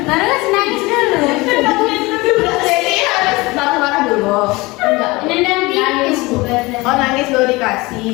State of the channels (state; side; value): quieter; right; 22.8 dB